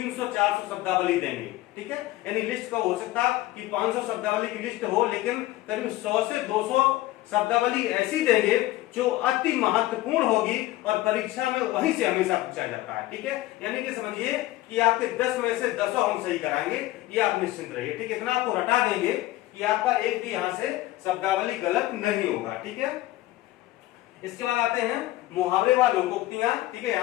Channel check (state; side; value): quieter; right; 16.8 dB